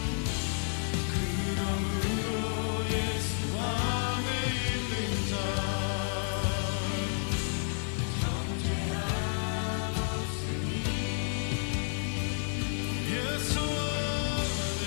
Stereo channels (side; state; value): right; silent; 57 dB below the other